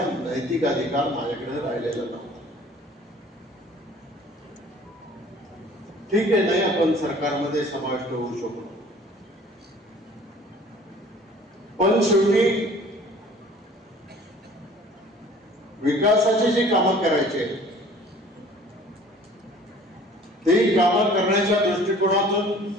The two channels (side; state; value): both; normal; correlation 0.50